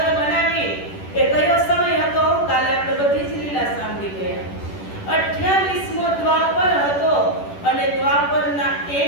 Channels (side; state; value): right; late; 10 ms